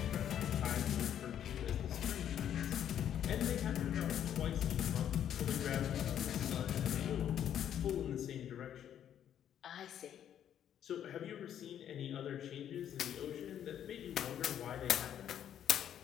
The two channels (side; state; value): right; quieter; 10.0 dB